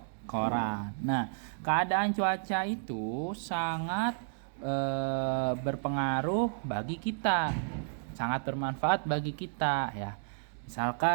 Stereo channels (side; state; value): left; silent; digital silence